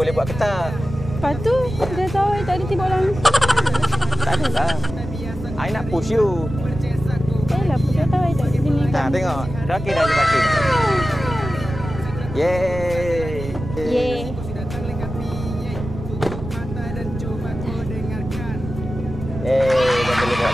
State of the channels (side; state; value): right; noise; rumble, 9 dB below the sound